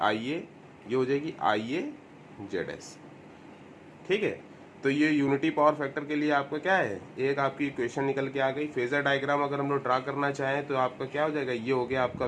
ये हो जाएगी IAZS। ठीक है, तो ये यूनिटी पावर फैक्टर के लिए आपका क्या है, एक आपकी इक्वेशन निकल के आ गई। फेजर डायग्राम अगर हम लोग ड्रा करना चाहें तो आपका क्या हो जाएगा, ये हो गया आपका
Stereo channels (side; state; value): both; identical; correlation 1.00